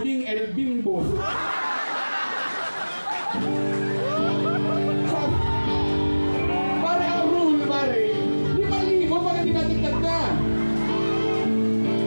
El Bimbo. Pare, ang rule, pare, 5,000 pag hindi natigtad na.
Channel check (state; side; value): inverted; both; correlation -1.00